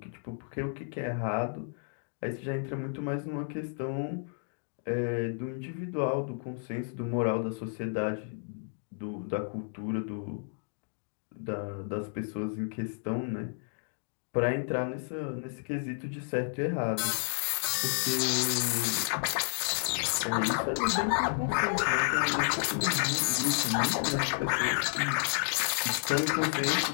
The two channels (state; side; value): silent; right; 57 dB below the other